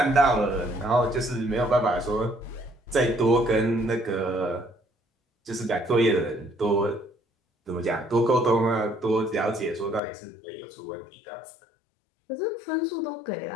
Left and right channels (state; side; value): drops out; right; at 10.0 s